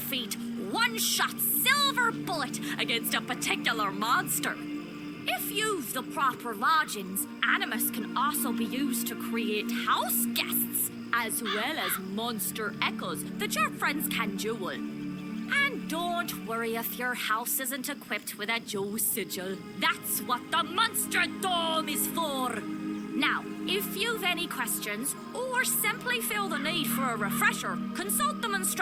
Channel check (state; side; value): identical; both; correlation 1.00